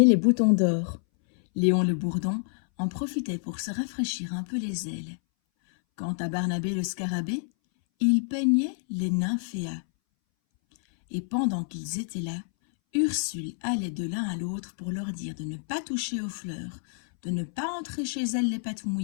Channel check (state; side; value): silent; right; 59 dB below the other